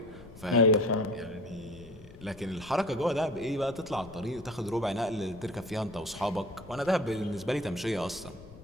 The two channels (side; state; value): left; noise; rumble, 18 dB below the sound